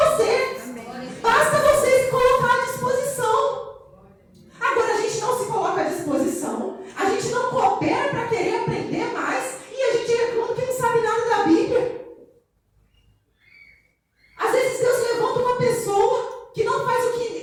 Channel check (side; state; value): both; identical; correlation 1.00